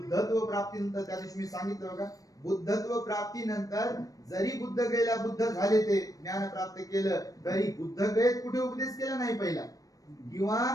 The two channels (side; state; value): right; late; 0.17 ms